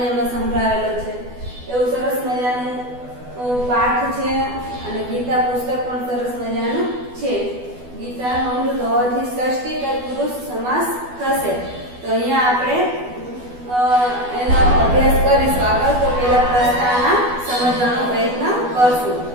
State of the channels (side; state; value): left; late; 12 ms